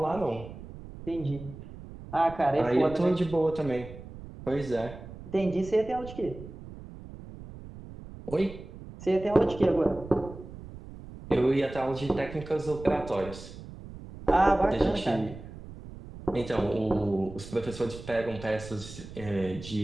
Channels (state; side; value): noise; right; rumble, 14 dB below the sound